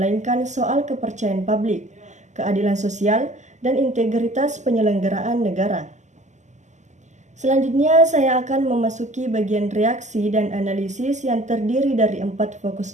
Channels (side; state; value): left; late; 0.34 ms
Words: soal kepercayaan publik, keadilan sosial, dan integritas penyelenggaraan negara. Selanjutnya, saya akan memasuki bagian reaksi dan analisis yang terdiri dari 4 fokus